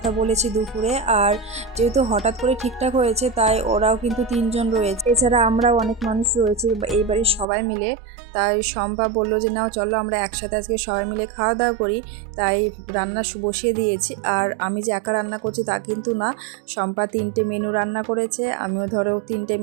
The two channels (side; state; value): left; drops out; at 7.5 s